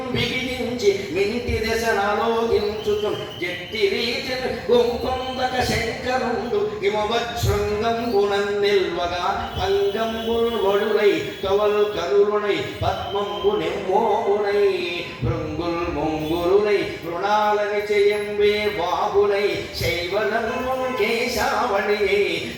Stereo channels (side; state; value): both; identical; correlation 1.00